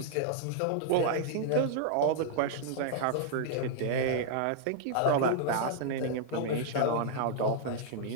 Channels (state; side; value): different; both; correlation -0.01